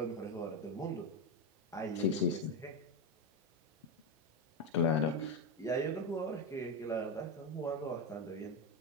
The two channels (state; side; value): normal; both; correlation 0.12